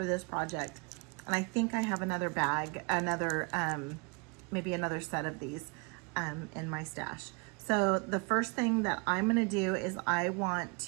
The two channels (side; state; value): left; quieter; 31.6 dB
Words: this project. And I think I have another bag, maybe another set of these in my stash. So the first thing that I'm going to do is I want